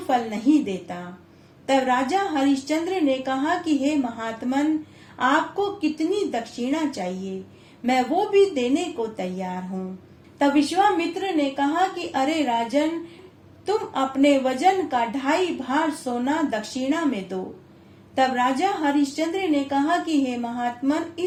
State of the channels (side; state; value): both; identical; correlation 1.00